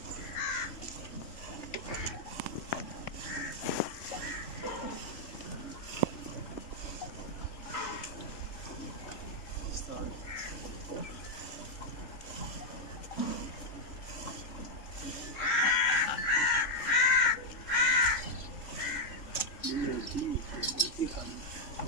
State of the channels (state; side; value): late; right; 3.7 ms